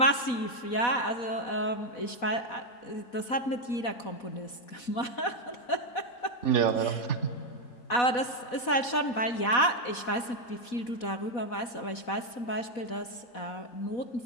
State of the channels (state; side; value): late; right; 4.1 ms